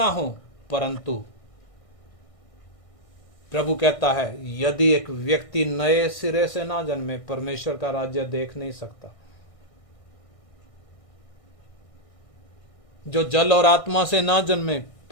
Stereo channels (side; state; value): right; late; 1.6 ms